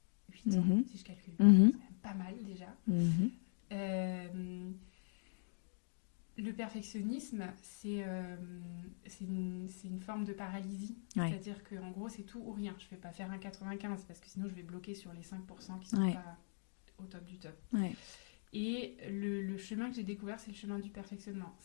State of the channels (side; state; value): right; silent; digital silence